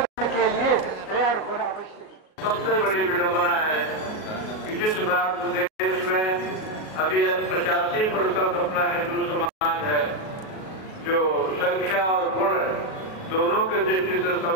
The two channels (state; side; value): late; right; 37 ms